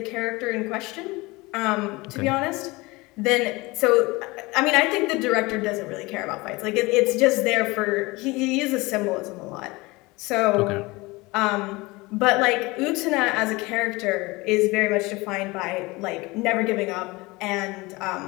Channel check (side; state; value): right; quieter; 23.0 dB